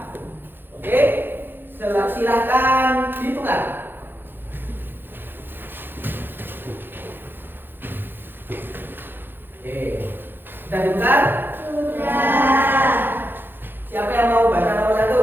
Oke, silahkan ditukar. Oke, sudah ditukar? Sudah. Siapa yang mau baca nomor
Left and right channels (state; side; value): late; left; 0.099 ms